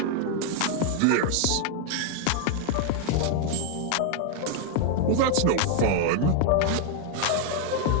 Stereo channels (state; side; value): different; both; correlation 0.00